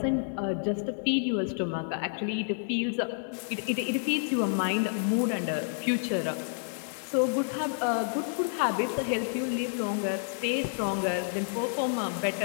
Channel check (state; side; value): silent; right; digital silence